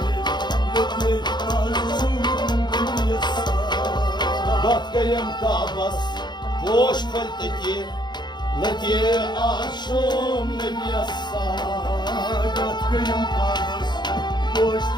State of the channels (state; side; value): late; right; 0.21 ms